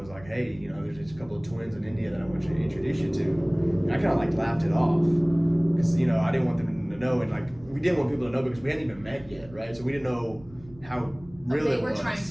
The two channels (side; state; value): right; noise; rumble, 21 dB below the sound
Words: like, hey, there's just a couple of twins in India that I want you to introduce you to. And I kind of like laughed it off because I didn't want them to know, and like we didn't want people to know because we hadn't even met yet, right? So we didn't know how real They it were was. trying